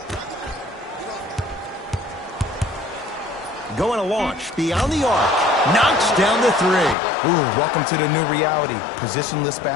Going to launch beyond the arc. Knocks down the 3. Ooh, welcome to the new reality. Positionless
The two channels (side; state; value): right; drops out; at 7.0 s